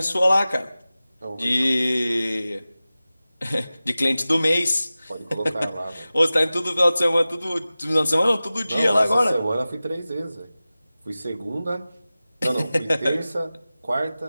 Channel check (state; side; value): inverted; both; correlation -0.97